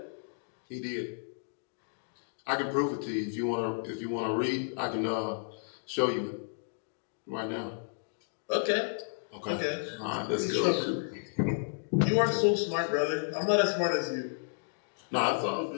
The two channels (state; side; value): silent; right; digital silence